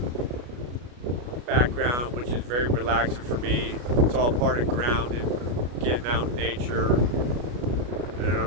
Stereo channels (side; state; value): left; late; 33 ms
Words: background, which is very relaxing for me. It's all part of grounding, getting out in nature. And